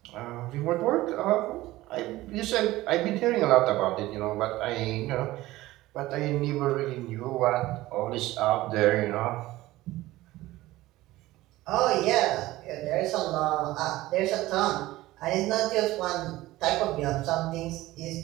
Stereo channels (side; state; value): left; quieter; 17.4 dB